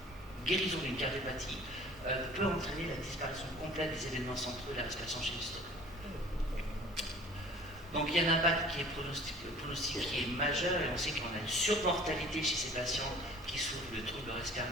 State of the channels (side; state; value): both; normal; correlation 0.48